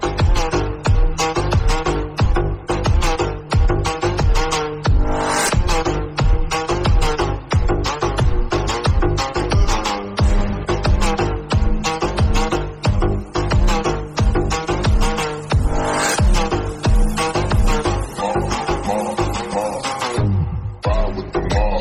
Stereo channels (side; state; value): both; identical; correlation 1.00